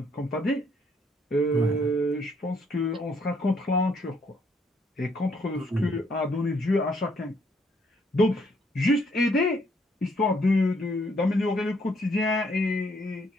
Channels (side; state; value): both; normal; correlation 0.69